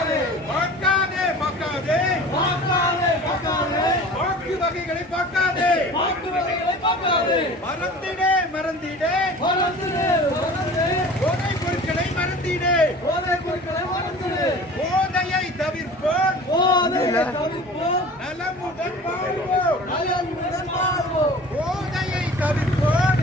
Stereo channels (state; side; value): normal; both; correlation 0.41